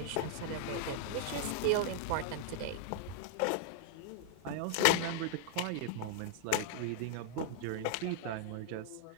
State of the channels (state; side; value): different; both; correlation -0.01